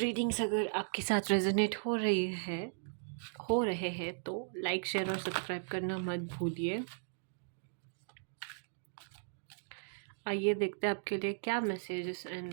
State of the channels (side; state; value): left; silent; digital silence